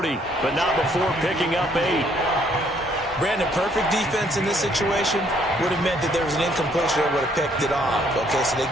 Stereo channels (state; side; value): normal; both; correlation 0.66